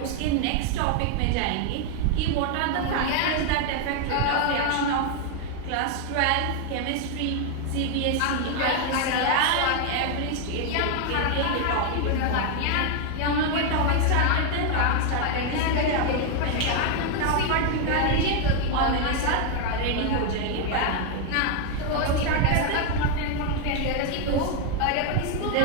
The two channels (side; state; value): both; different; correlation 0.01